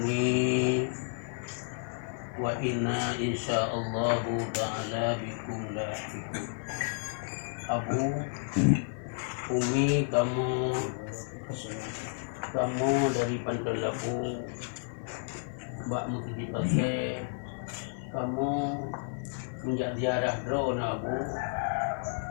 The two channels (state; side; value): silent; right; 57 dB below the other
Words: wa inna insyaallahu ta'ala bikum lahiqun. Abu, Umi, kamu dari Pantai Labu, Mbak Mutiji Pasir, kamu menjadi arah drone. Abu,